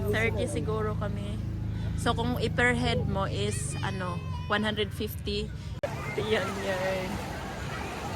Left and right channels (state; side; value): identical; both; correlation 1.00